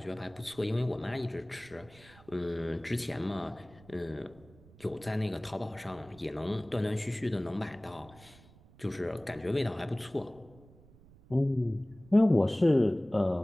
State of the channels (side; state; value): right; noise; rumble, 24 dB below the sound